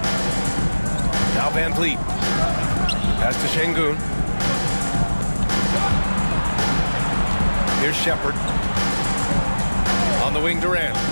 Now Van Vliet. Pass to Şengün. Here's Shepherd. On the wing, Durant.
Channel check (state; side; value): inverted; both; correlation -1.00